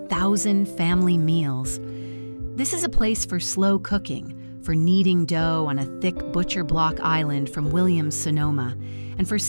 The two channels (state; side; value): inverted; both; correlation -1.00